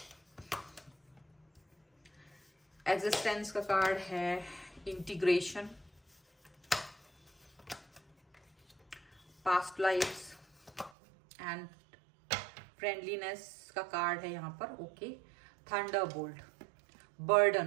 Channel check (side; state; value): left; drops out; at 10.9 s